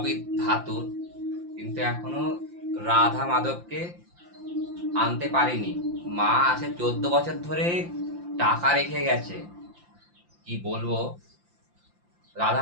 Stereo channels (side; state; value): left; late; 5.8 ms